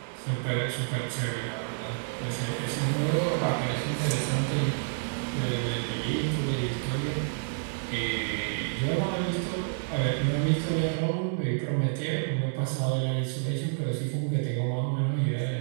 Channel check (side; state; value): left; silent; digital silence